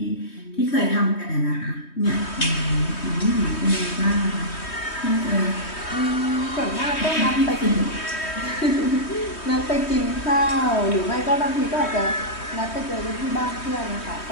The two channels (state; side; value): late; right; 3.2 ms